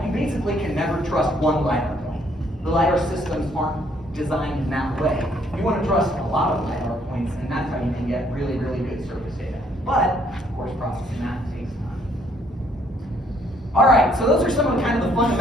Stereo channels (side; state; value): both; normal; correlation 0.66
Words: you basically can never trust one LiDAR point. The LiDAR systems aren't designed in that way. You want to trust a lot of LiDAR points, and that's how you can get really, really good surface data. But, of course, processing that takes time. All right, so those are some of the kind of the